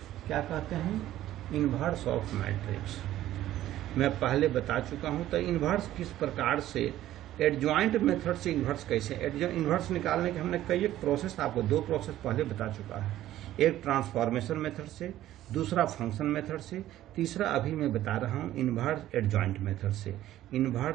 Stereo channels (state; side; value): quieter; left; 13.7 dB